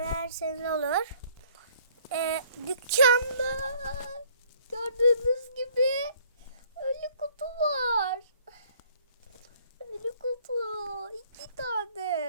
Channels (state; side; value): inverted; both; correlation -0.59